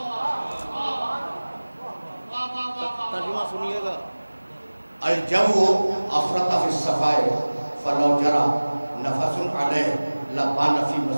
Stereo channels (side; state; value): both; inverted; correlation -1.00